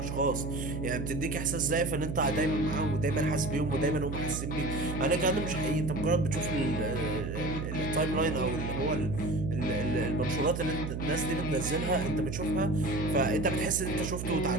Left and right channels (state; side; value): noise; right; hum, 4 dB below the sound